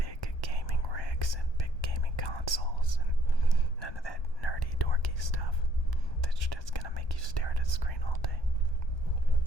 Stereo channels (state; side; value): late; right; 1.2 ms